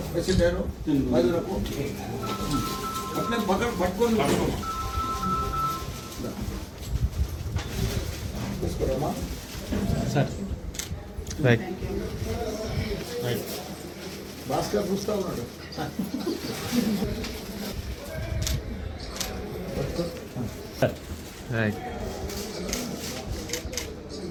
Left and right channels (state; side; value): identical; both; correlation 1.00